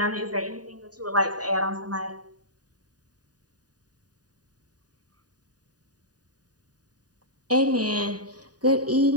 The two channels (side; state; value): left; late; 0.68 ms